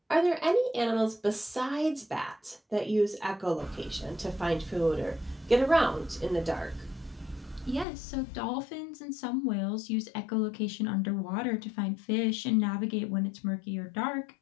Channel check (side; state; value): right; drops out; at 7.9 s